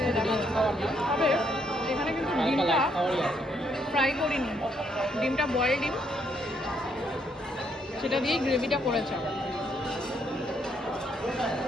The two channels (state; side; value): normal; both; correlation 0.72